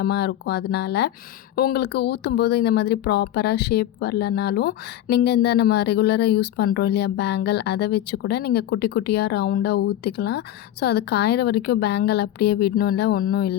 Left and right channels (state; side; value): quieter; right; 12.6 dB